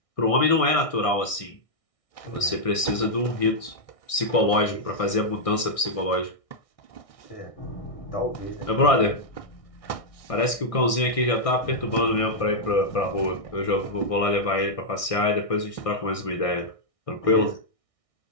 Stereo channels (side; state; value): right; late; 1.6 ms